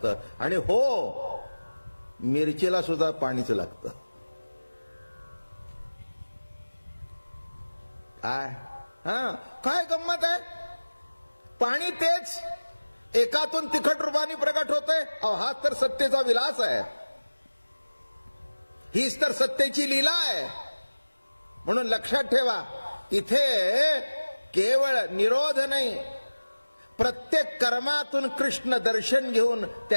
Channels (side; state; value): both; inverted; correlation -1.00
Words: आणि हो, मिरचीला सुद्धा पाणीच लागतं. काय गंमत आहे. पाणी तेच एकातून तिखट रूपाने प्रकट होतंय. हाच तर सत्तेचा विलास आहे, हीच तर सत्तेची लीला आहे. म्हणून लक्षात ठेवा, इथे केवळ निरोध नाही, प्रत्येक कर्मातून कृष्ण दर्शन घेऊन